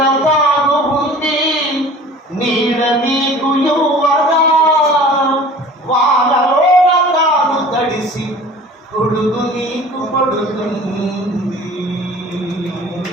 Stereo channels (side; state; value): both; normal; correlation 0.44